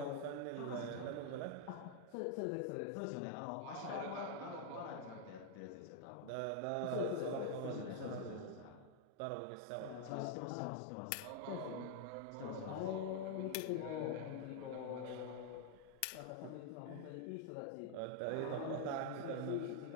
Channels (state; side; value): different; both; correlation 0.00